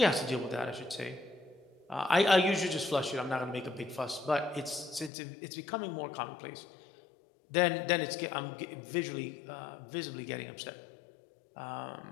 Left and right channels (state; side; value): drops out; right; at 5.1 s